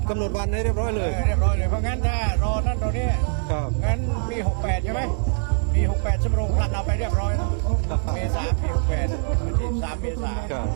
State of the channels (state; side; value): silent; left; digital silence